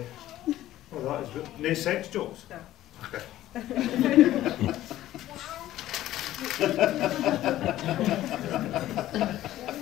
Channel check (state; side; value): quieter; right; 14.2 dB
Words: that is good. No sex jokes? No. Okay.